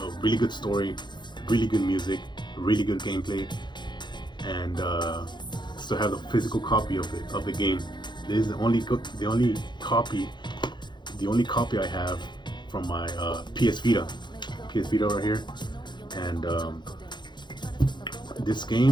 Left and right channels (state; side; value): late; right; 0.22 ms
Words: really good story, really good music, really good gameplay, and still have the physical copy of the game. This is the only copy I have from my PS Vita right here, and this